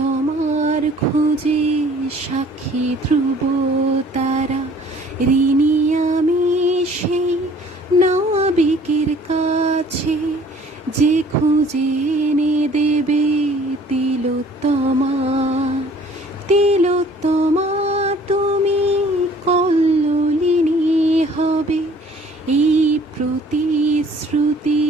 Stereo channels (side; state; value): both; normal; correlation 0.54